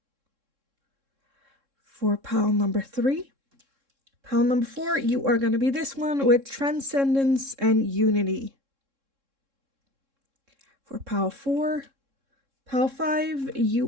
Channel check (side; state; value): left; late; 3.7 ms